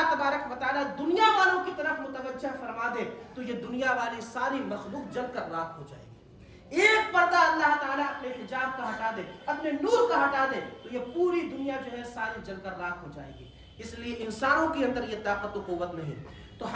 تبارک و تعالیٰ دنیا والوں کی طرف متوجہ فرما دے تو یہ دنیا والی ساری مخلوق جل کر راکھ ہو جائے گی. ایک پردہ اللہ تعالیٰ اپنے حجاب کا ہٹا دے, اپنے نور کا ہٹا دے تو یہ پوری دنیا جو ہے ساری جل کر راکھ ہو جائے گی. اس لیے انسانوں کے اندر یہ طاقت و قوت نہیں. تو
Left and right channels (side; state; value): both; identical; correlation 1.00